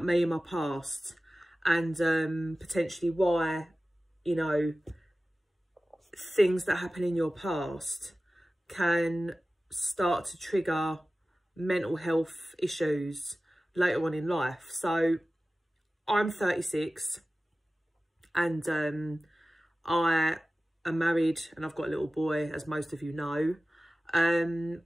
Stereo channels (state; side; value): normal; both; correlation 0.96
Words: me and my past and potentially why, you know, things that happen in your past can start to trigger mental health issues later on in life. So I'm 36 and I am married and I've got a little boy, as most of you know. And